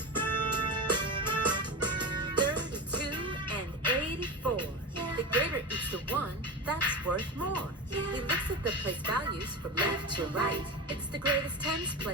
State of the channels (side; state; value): both; normal; correlation 0.23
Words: That's worth more. He looks at the place values from left to right. It's the greatest tens